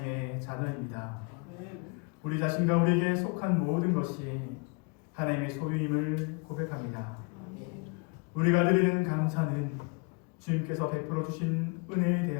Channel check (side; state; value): right; quieter; 32.0 dB